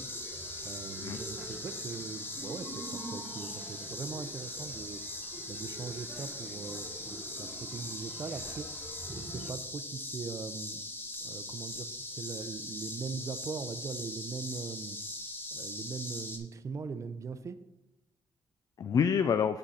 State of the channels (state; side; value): normal; both; correlation 0.39